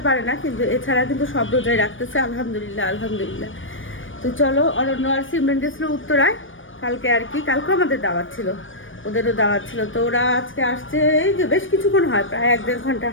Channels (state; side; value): late; right; 0.57 ms